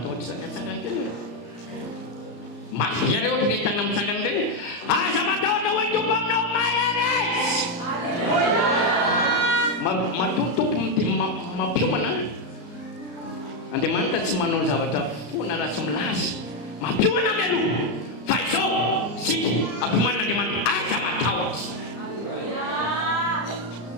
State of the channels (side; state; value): right; late; 34 ms